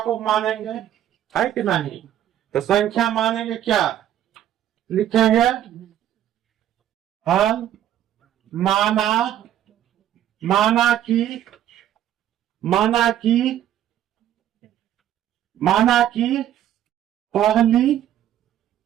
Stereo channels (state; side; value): quieter; left; 11.5 dB